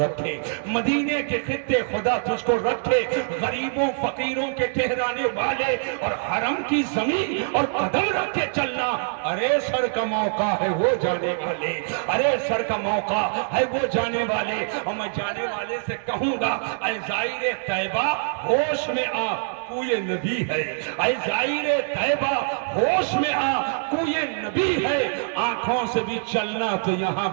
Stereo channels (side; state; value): left; silent; digital silence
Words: مدینے کے خطے خدا تجھ کو رکھے، غریبوں فقیروں کے ٹھہرانے والے اور حرم کی زمین اور قدم رکھ کے چلنا۔ ارے سر کا موقع ہے وہ جانے والے، ارے سر کا موقع ہے وہ جانے والے۔ اور میں جانے والے سے کہوں گا اے زائر طیبہ ہوش میں آ، کوئی نبی ہے۔ اے زائر طیبہ ہوش میں آ، کوئی نبی ہے۔ آنکھوں سے بھی چلنا تو یہاں